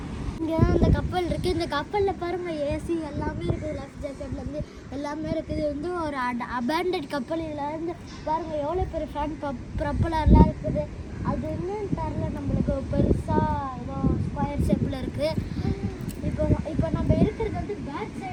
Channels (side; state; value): both; identical; correlation 1.00